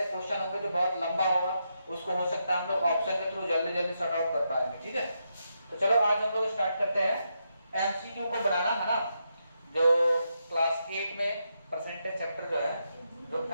क्वेश्चन होंगे जो बहुत लंबा होगा, उसको हो सकता है हम लोग ऑप्शन के थ्रू जल्दी जल्दी सॉर्ट आउट कर पाएंगे, ठीक है। तो चलो आज हम लोग स्टार्ट करते हैं एमसीक्यू को बनाना, है ना। जो क्लास 8 में परसेंटेज चैप्टर जो है, जो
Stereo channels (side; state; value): both; inverted; correlation -0.83